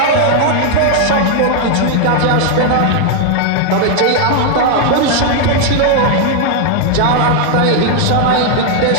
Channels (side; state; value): both; different; correlation 0.00